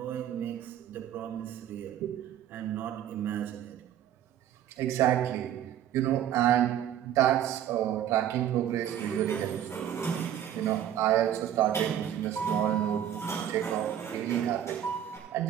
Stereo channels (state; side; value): quieter; left; 10.7 dB